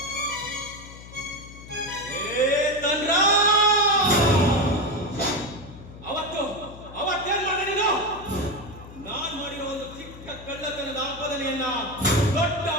ಅವತ್ತೇನ್ ಮಾಡಿದೆ ನೀನು? ನಾನ್ ಮಾಡಿರೋ ಒಂದು ಚಿಕ್ಕ ಕಳ್ಳತನದ ಆಪಾದನೆಯನ್ನ ದೊಡ್ಡ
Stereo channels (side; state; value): left; noise; hum, 16 dB below the sound